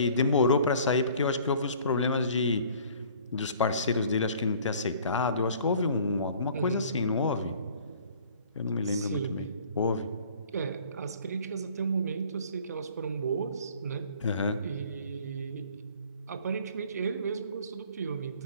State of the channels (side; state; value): both; inverted; correlation -0.52